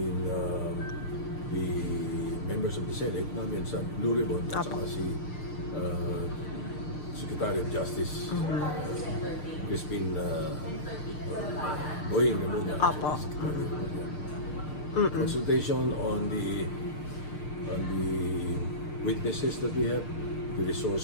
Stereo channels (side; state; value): right; late; 6.6 ms